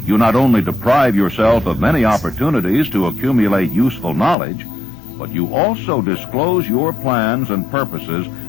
you not only deprive yourself of many opportunities to accumulate useful knowledge, but you also disclose your plans and purposes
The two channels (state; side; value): drops out; right; at 4.4 s